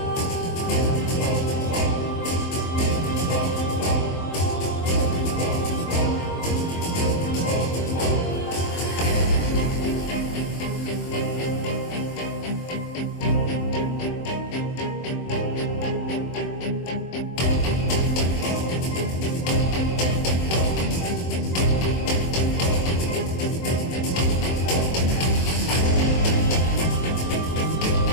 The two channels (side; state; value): right; late; 23 ms